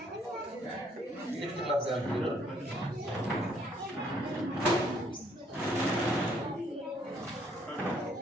6th క్లాస్ వాళ్ళు మీరు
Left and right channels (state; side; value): normal; both; correlation 0.66